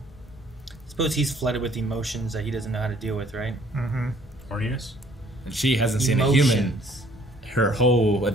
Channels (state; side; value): normal; both; correlation 0.59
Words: Suppose he's flooded with emotions that he doesn't know how to deal with, right? Horniness. And she hasn't seen a human her whole